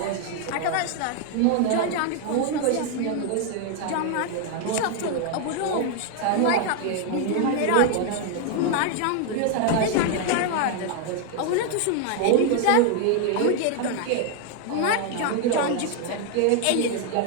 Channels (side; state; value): both; different; correlation 0.00